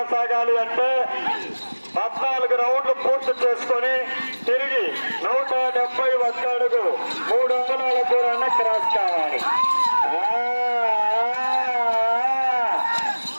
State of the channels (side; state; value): both; inverted; correlation -1.00